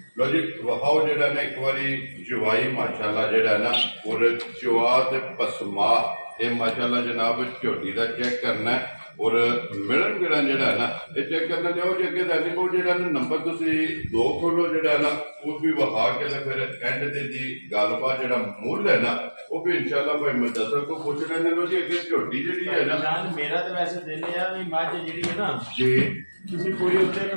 लो जी वहाओ जेड़ा ना एक बारी चवाई माशाल्लाह जेड़ा ना और चवा ते पसमा ये माशाल्लाह जनाब झोटी दा चेक करना है और मिलन गिलन जेड़ा है ना ये चेक करना चाहो जी अगे दैनिक को जेड़ा ना नंबर तुसी 2 खोलो जेड़ा ना वो भी वहा के फिर एंड ते दी गलबात जेड़ा मूल है ना वो भी इंशाल्लाह भाई मुदस्सर को पूछ लेने लो जी अगे झोटी जेड़ी है ना जान मेरा तो वैसे दिल है भी मझ जेड़ी है ना जी किसी पूरी उत्ते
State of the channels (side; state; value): both; inverted; correlation -1.00